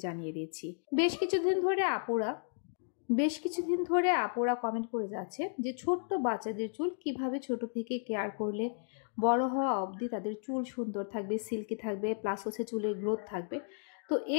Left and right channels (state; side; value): silent; right; digital silence